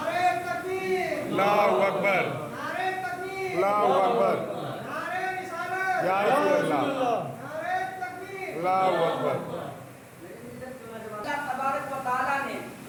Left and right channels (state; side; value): identical; both; correlation 1.00